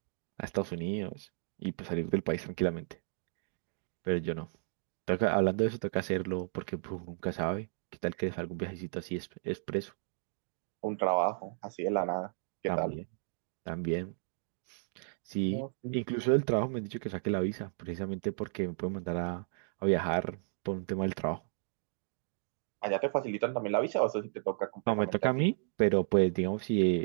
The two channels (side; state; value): left; silent; digital silence